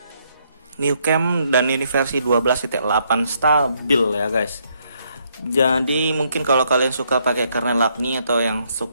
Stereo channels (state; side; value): inverted; both; correlation -0.73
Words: New Cam, dan ini versi 12.8 stabil ya guys. Jadi mungkin kalau kalian suka pakai kernel Acne atau yang